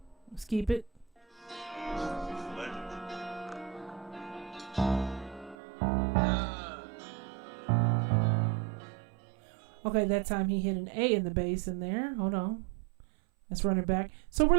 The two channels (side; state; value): left; drops out; at 5.6 s